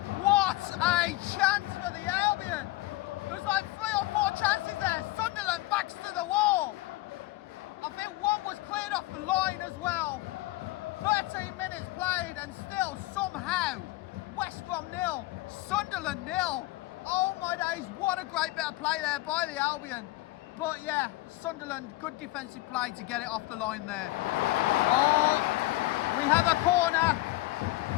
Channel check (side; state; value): right; quieter; 18.7 dB